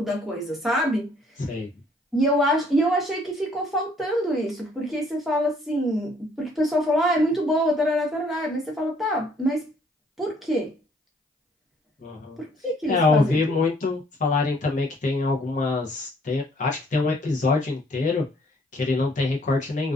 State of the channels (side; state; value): both; normal; correlation 0.62